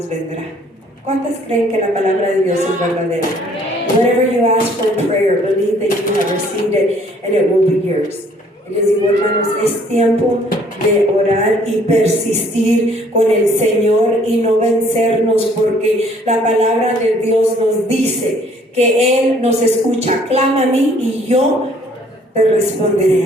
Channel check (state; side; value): normal; both; correlation 0.60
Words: vendrá? ¿Cuántas creen que la palabra de Dios es verdadera? Whatever you ask for in prayer, believe that you have received it and it will be yours. Y les digo, hermanos, es tiempo de orar y persistir con el Señor y no vencernos, porque la palabra de Dios nos dice que Él nos escucha. Clama a mí y yo te